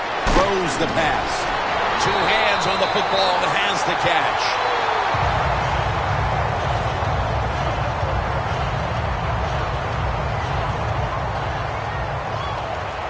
Throws the pass. 2 hands on the football and has the catch.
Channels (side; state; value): both; identical; correlation 1.00